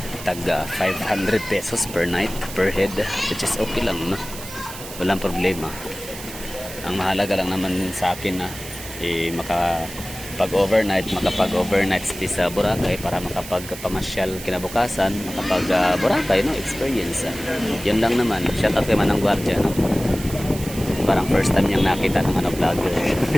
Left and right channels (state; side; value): noise; right; hiss, 12 dB below the sound